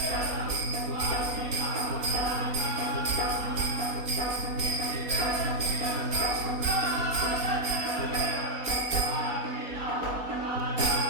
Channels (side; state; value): left; late; 4.2 ms